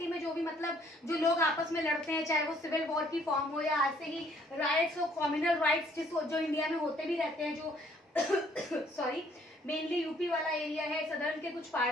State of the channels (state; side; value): normal; both; correlation 0.63